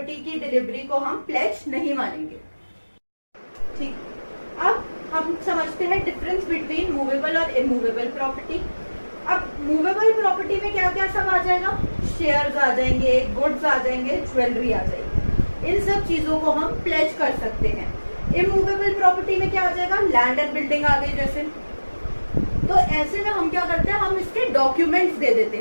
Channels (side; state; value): both; inverted; correlation -1.00